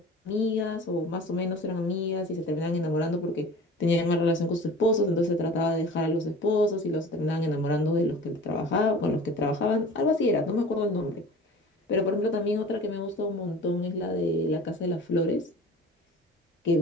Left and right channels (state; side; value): normal; both; correlation 0.41